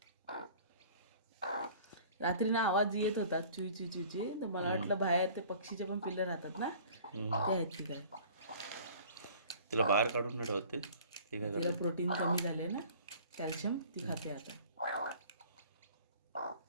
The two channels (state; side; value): inverted; both; correlation -0.48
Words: रात्री ना आवाज येत होता चुई चुई चुई, तर मला वाटलं बाहेर ते पक्षीचे पण पिल्लं राहतात ना, ते आहेत की काय. तिला बाहेर काढून नाही ठेवते. ते काय तिला करते? प्रोटीन कमी झाले ना, कॅल्शियम, ती खाते आता.